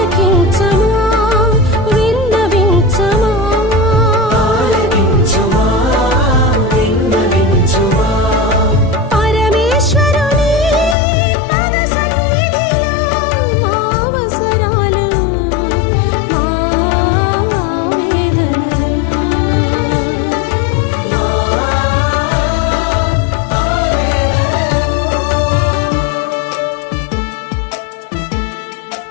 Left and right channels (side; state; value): right; drops out; at 11.0 s